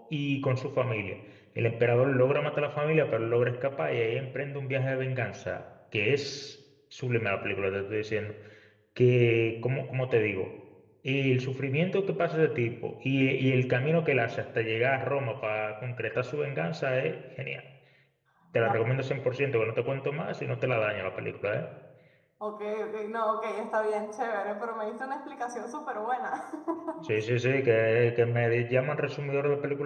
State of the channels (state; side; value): identical; both; correlation 1.00